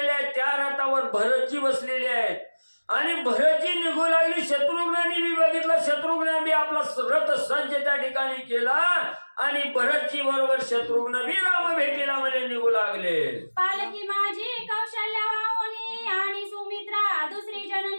आहेत. त्या रथावर भरतजी बसलेले आहेत. आणि भरतजी निघू लागली. शत्रुघ्नांनी बी बघितलं, शत्रुघ्न बी आपला रथ सज्ज त्या ठिकाणी केला आणि भरतजी बरोबर शत्रुघ्न बी राम भेटीला म्हणजे निघू लागले. पालकी माझी कौशल्या वाहुनी आणि सुमित्रा दुसरी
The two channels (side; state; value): both; inverted; correlation -1.00